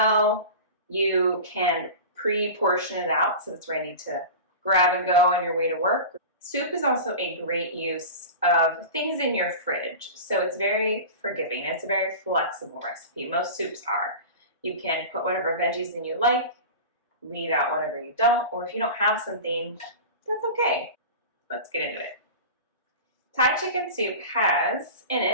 You can pre-portion it out so it's ready to grab and go on your way to work. Soup is also a great use of things in your fridge. So it's very forgiving. It's a very flexible recipe. Most soups are. You can put whatever veggies in you like, leave out whatever you don't, or if you don't have something, that's okay. Let's get into it. Thai chicken soup has in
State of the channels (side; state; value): both; inverted; correlation -0.31